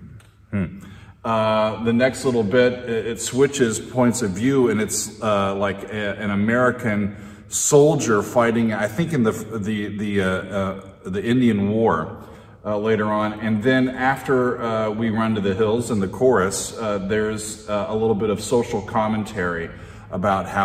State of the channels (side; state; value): both; identical; correlation 1.00